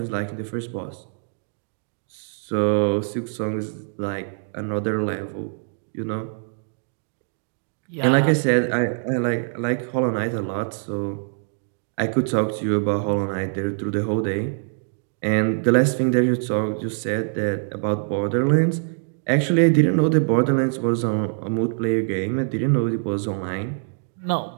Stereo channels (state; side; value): silent; left; digital silence